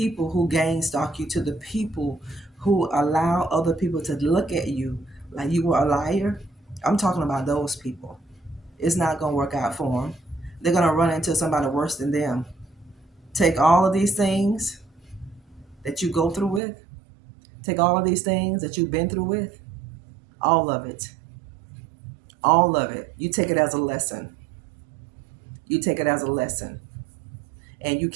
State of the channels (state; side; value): drops out; left; at 16.6 s